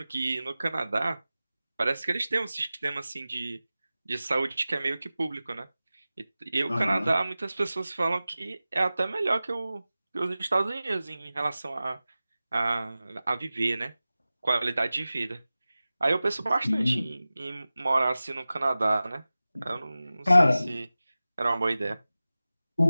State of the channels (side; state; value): both; inverted; correlation -0.96